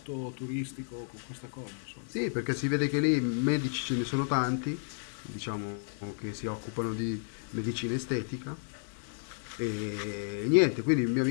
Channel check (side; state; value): right; silent; 56 dB below the other